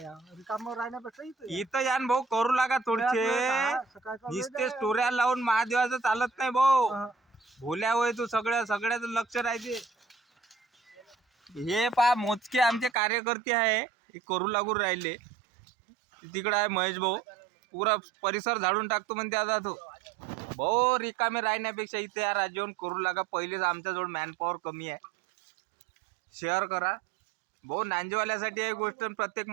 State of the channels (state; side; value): drops out; left; at 12.9 s